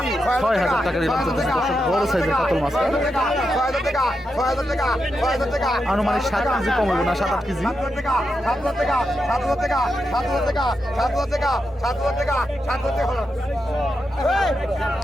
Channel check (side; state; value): both; normal; correlation 0.86